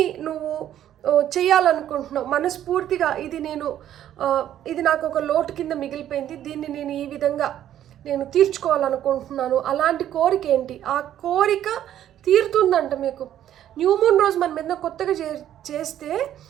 నువ్వు చేయాలనుకుంటున్నావు మనస్ఫూర్తిగా, ఇది నాకు ఒక లోటు కింద మిగిలిపోయింది, దీన్ని నేను ఈ విధంగా తీర్చుకోవాలనుకుంటున్నాను, అలాంటి కోరిక ఏంటి, ఆ కోరిక తీరుతుందంట మీకు. న్యూ మూన్ రోజు మనం ఏదైనా కొత్తగా చేస్తే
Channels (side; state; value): left; quieter; 11.3 dB